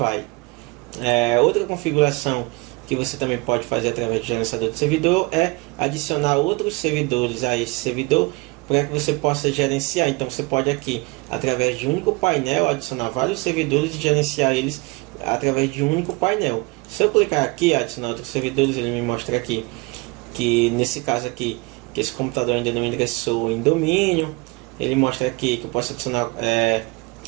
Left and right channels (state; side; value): quieter; left; 26.1 dB